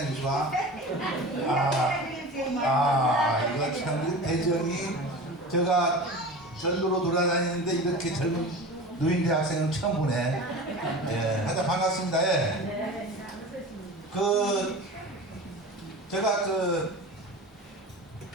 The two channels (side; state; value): both; normal; correlation 0.33